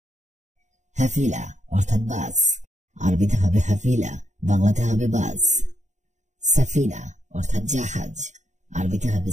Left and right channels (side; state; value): left; late; 0.34 ms